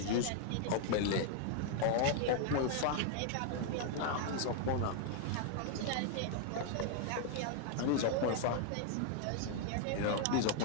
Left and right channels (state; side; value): different; both; correlation 0.00